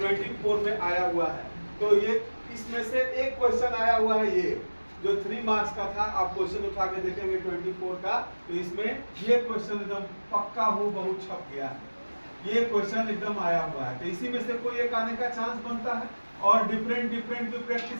में आया हुआ है। तो ये इसमें से एक क्वेश्चन आया हुआ है, ये जो 3 मार्क्स का था। आप क्वेश्चन उठा के देखेंगे 24 का, तो इसमें ये क्वेश्चन एकदम पक्का हो बहुत छप गया है, ये क्वेश्चन एकदम आया हुआ है। तो इसी में से कोई एक आने का चांस बनता है और डिफरेंट भी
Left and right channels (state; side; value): inverted; both; correlation -1.00